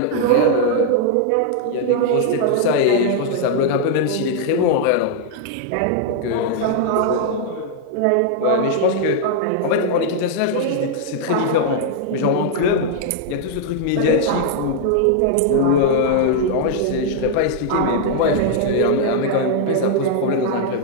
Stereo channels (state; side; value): different; both; correlation -0.01